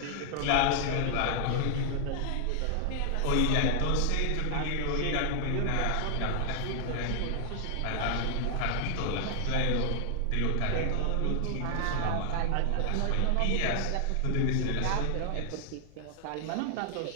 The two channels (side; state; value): both; different; correlation 0.00